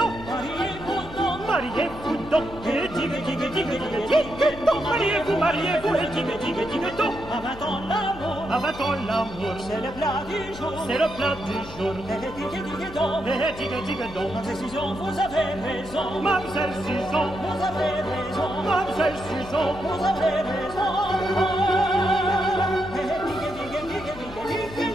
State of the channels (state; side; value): noise; left; hum, 15 dB below the sound